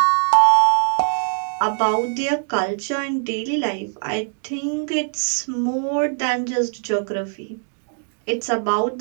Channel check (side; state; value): left; silent; 59 dB below the other